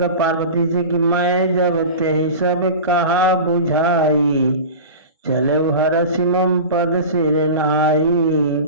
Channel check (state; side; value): inverted; both; correlation -0.32